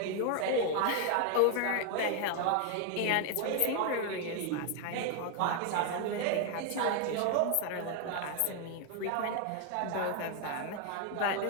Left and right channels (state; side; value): different; both; correlation 0.01